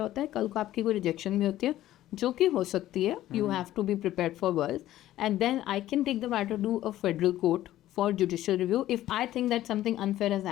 होता है, कल को आपकी कोई रिजेक्शन भी होती है जो कि हो सकती है, you have to be prepared for worse, and then I can take the matter to a federal court for judicial review if I think that something unfair has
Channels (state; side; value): quieter; right; 13.9 dB